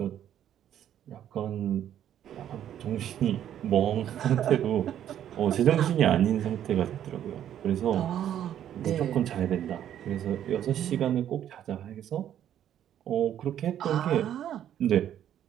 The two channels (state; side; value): quieter; left; 10.6 dB